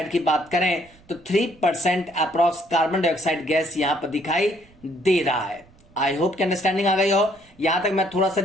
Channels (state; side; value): noise; right; rumble, 28 dB below the sound